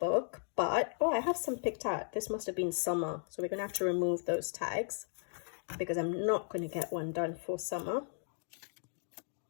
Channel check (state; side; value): silent; right; digital silence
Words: but I have some picked out. This must have been summer, so we're gonna have to remove those tags because I'm not going to get one done for summer.